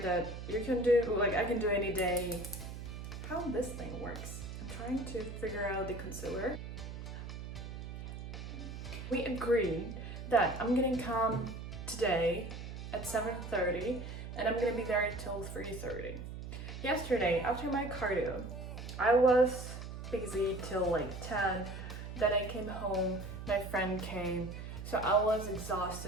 you can do, like I can do any day. How this thing works. I'm trying to figure out the concealer. We agreed that I'm gonna come today at 7:30 and I'm gonna be there until 3:30. Yesterday, after my cardio, I was busy till like 10. Then I came home, my friend came, so I was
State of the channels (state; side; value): noise; right; hum, 9 dB below the sound